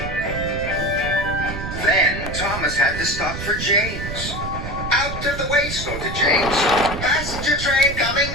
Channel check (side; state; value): right; noise; rumble, 7 dB below the sound